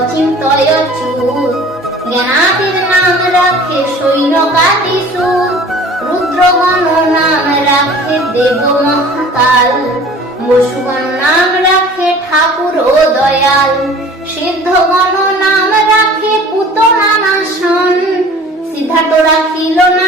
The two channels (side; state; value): both; normal; correlation 0.45